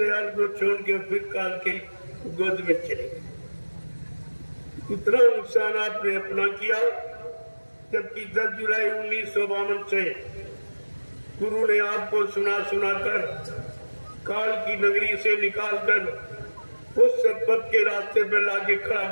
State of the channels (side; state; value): both; inverted; correlation -1.00